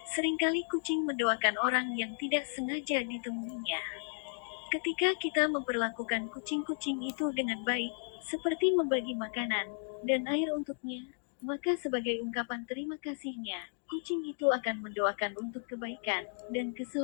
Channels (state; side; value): silent; right; digital silence